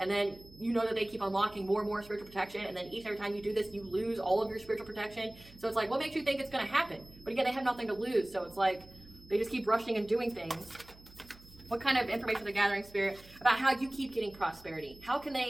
then you know that they keep unlocking more and more spiritual protection. And then each and every time you do this, you lose all of your spiritual protection. So it's like, what makes you think it's going to happen? But again, they have nothing to lose. So it's like, they just keep rushing and doing things. What kind of information are they gathering, Spirit, about how you keep getting prosperity? How can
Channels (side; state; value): right; noise; hum, 22 dB below the sound